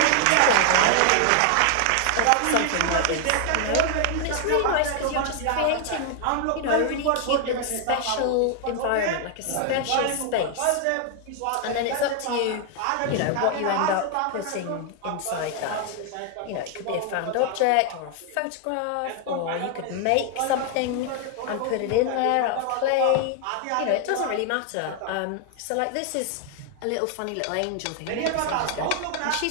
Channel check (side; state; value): both; different; correlation 0.00